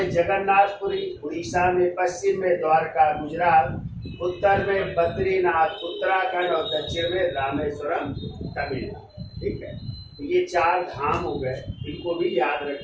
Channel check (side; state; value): both; identical; correlation 1.00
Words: जगन्नाथपुरी, उड़ीसा में, पश्चिम में द्वारका गुजरात, उत्तर में बद्रीनाथ उत्तराखंड, और दक्षिण में रामेश्वरम तमिलनाडु, ठीक है। तो ये 4 धाम हो गए, इनको भी याद